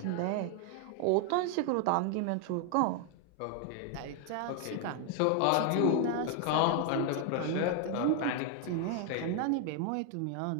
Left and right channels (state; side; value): different; both; correlation 0.00